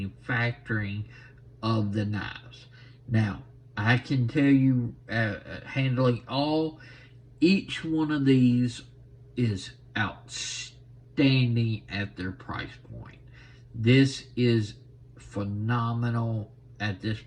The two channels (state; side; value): identical; both; correlation 1.00